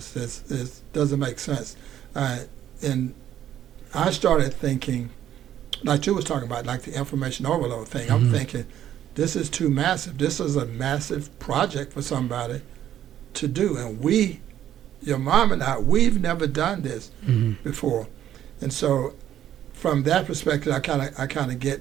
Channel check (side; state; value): left; quieter; 11.2 dB